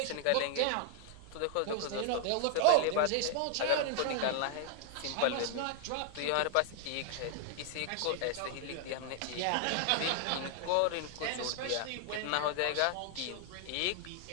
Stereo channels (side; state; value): both; different; correlation 0.00